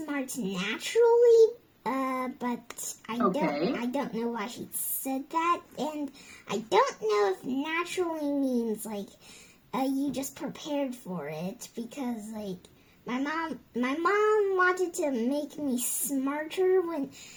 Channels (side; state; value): both; identical; correlation 1.00